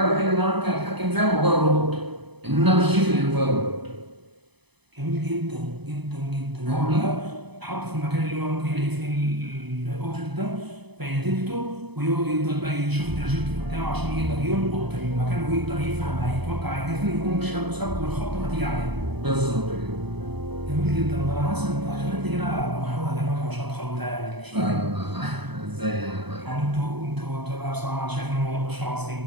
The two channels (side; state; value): left; late; 0.99 ms